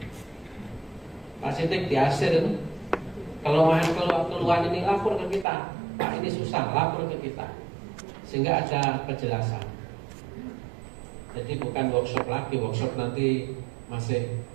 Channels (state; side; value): drops out; left; at 5.5 s